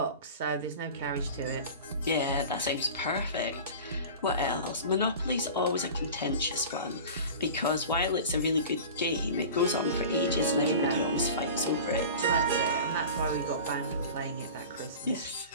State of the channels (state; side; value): inverted; both; correlation -0.36